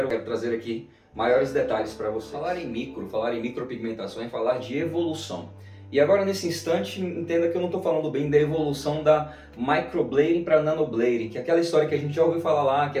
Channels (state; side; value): identical; both; correlation 1.00